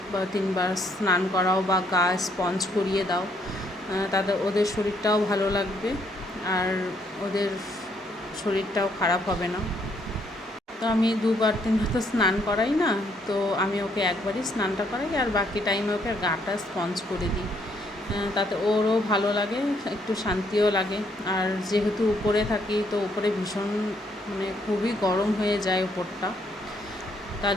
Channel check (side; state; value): both; normal; correlation 0.70